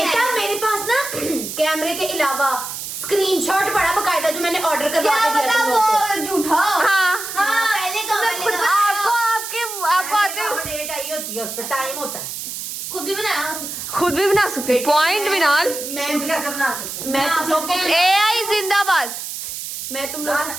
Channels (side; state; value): right; noise; hiss, 7 dB below the sound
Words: मेरे पास ना कैमरे के अलावा स्क्रीनशॉट पड़ा बकायदा, जो मैंने ऑर्डर करवा क्या के दिया पता तुम लोगों को। वो झूठा। हाँ, पहले आपको आते हो, डेट आई होती है, उस पर टाइम होता है। खुद भी बनाया। खुद भी बना सकते, पॉइंट बिनाल। खुद कैसे बना सकते मैं तुम लोग को AI जिंदाबाद। मैं तुम लोग